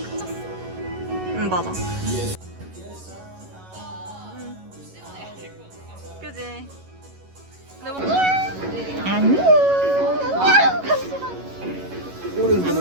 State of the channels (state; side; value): late; left; 11 ms